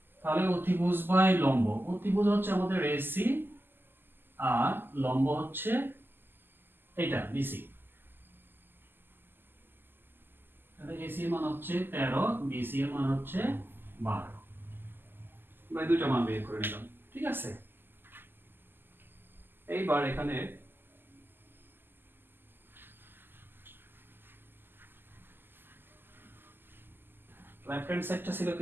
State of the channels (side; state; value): left; late; 0.097 ms